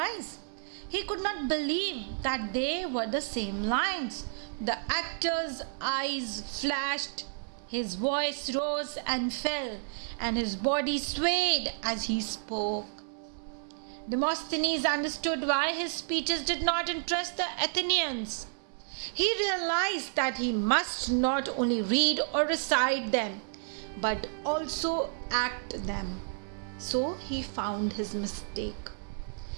He could not believe that they were the same lines. The actor's eyes flashed, his voice rose and fell, and his body swayed as he spoke. Demosthenes understood why his speeches did not interest the Athenians. He realized that he must not only read or recite them, but also act them. So he found his mistake,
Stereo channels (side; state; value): left; silent; digital silence